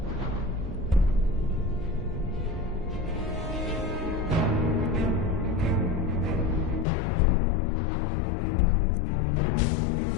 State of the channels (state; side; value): drops out; right; at 6.9 s